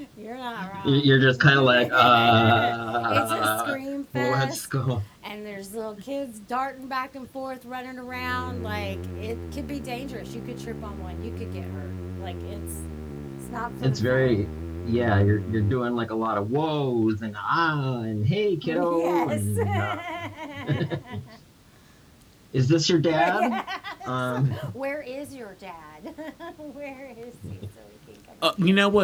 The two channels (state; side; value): identical; both; correlation 1.00